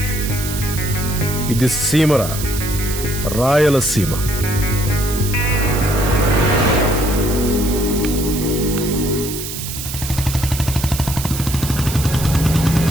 ఇది సీమరా, రాయలసీమ.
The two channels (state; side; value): noise; right; hiss, 7 dB below the sound